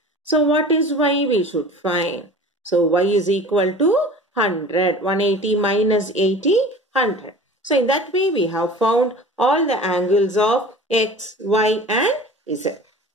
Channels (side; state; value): both; normal; correlation 0.40